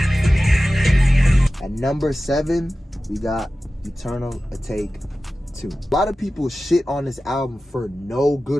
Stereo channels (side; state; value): both; normal; correlation 0.95